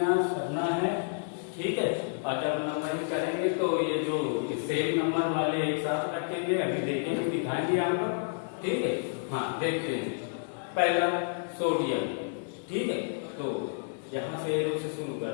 करना है। ठीक है, और जब नंबरिंग करेंगे तो ये जो सेम नंबर वाले एक साथ रखेंगे, अभी देखेंगे, दिखाएंगे आपको। ठीक है, हाँ देखते हैं। पहला सोडियम। ठीक है, तो यहाँ से एरो से शुरू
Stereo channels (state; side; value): silent; right; digital silence